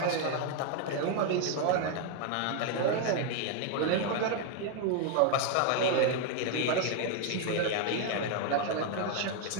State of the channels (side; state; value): both; different; correlation 0.01